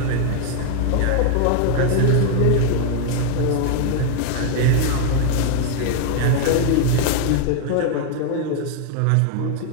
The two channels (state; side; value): different; both; correlation 0.00